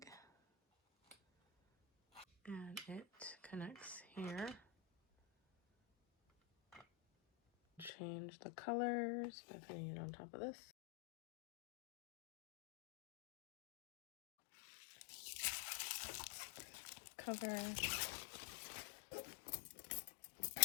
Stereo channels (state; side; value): drops out; right; at 7.9 s